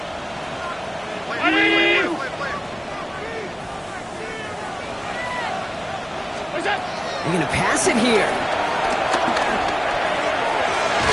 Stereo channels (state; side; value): identical; both; correlation 1.00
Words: They're going to pass it here.